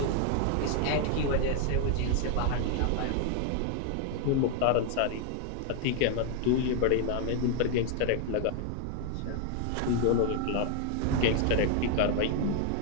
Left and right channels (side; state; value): both; different; correlation 0.00